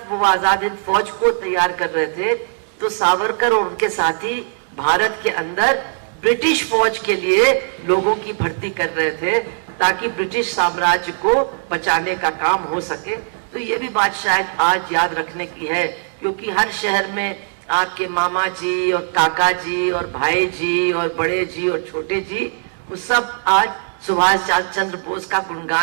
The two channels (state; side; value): silent; left; digital silence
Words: वो आजाद हिंद फौज को तैयार कर रहे थे, तो सावरकर और उनके साथी भारत के अंदर ब्रिटिश फौज के लिए लोगों की भर्ती कर रहे थे ताकि ब्रिटिश साम्राज्य को बचाने का काम हो सके। तो ये भी बात शायद आज याद रखने की है, क्योंकि हर शहर में आपके मामा जी और काका जी और भाई जी और बड़े जी और छोटे जी, वो सब आज सुभाष चंद्र बोस का